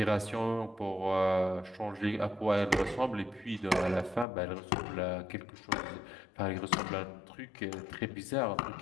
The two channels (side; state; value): right; drops out; at 4.2 s